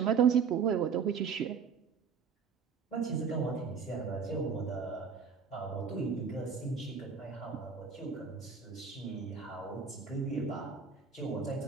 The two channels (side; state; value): left; quieter; 6.1 dB